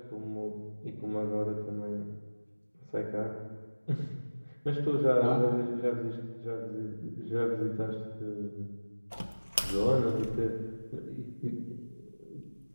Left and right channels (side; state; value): both; inverted; correlation -1.00